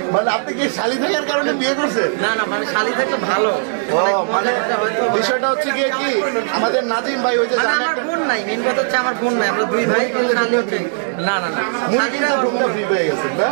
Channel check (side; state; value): left; silent; digital silence